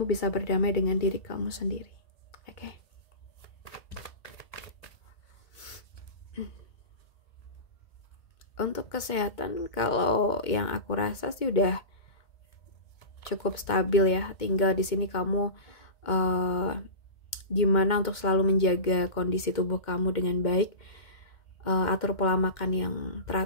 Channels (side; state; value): right; late; 2.2 ms